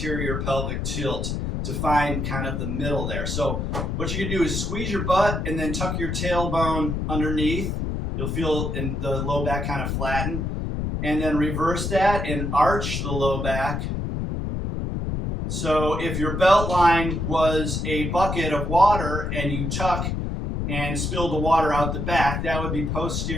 pelvic tilt to find kind of the middle there. So what you can do is squeeze your butt and then tuck your tailbone underneath. You'll feel in the low back kind of flatten. And then reverse that and arch the low back. So if your belt line was a bucket of water and you tuck and spill the water out the back, that would be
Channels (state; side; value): noise; left; rumble, 2 dB below the sound